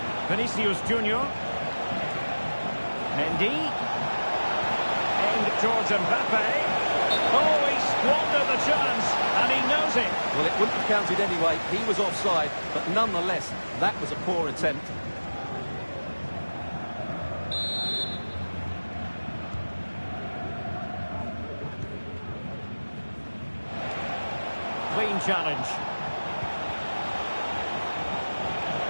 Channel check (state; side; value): inverted; both; correlation -1.00